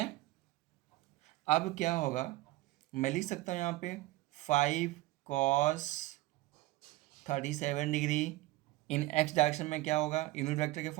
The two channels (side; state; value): left; quieter; 18.7 dB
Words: अब क्या होगा, मैं लिख सकता हूँ यहाँ पे 5 cos 37 degree in x direction में क्या होगा, यूनिट वेक्टर के